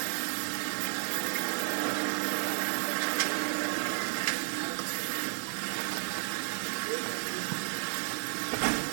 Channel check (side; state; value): left; silent; digital silence